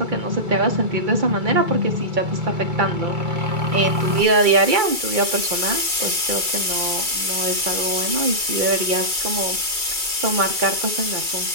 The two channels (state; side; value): late; left; 2.3 ms